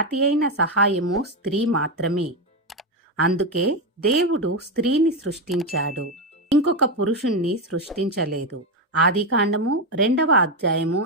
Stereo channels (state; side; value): normal; both; correlation 0.10